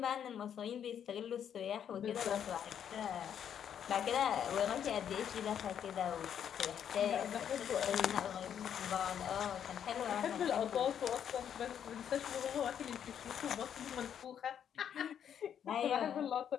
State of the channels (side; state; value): right; quieter; 8.9 dB